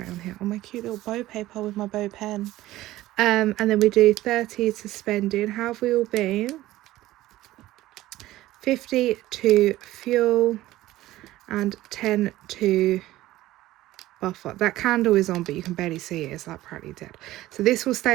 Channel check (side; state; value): left; quieter; 16.1 dB